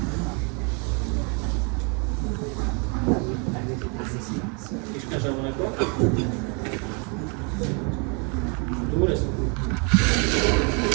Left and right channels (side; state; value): left; quieter; 34.7 dB